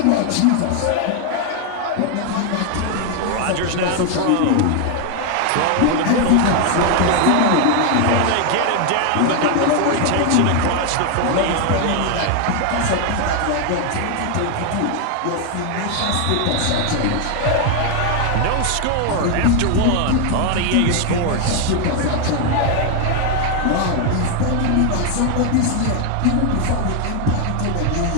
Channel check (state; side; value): different; both; correlation 0.01